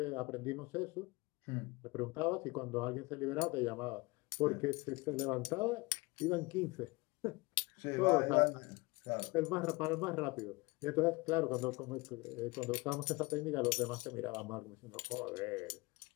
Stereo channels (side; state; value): right; quieter; 24.0 dB